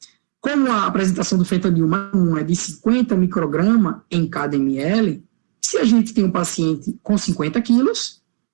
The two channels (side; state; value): left; silent; digital silence